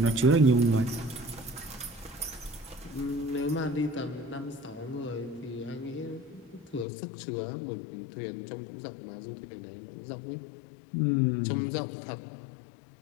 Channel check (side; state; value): right; drops out; at 6.9 s